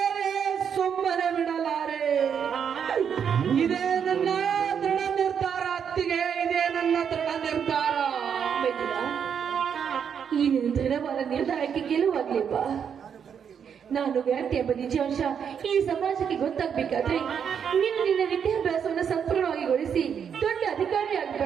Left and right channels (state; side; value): quieter; left; 7.6 dB